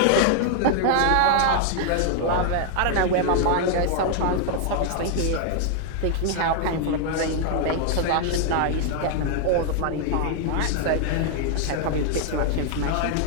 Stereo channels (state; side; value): different; both; correlation 0.00